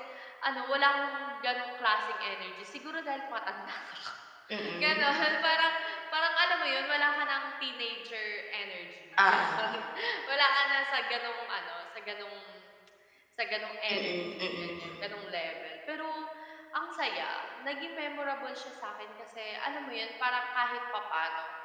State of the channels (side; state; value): both; identical; correlation 1.00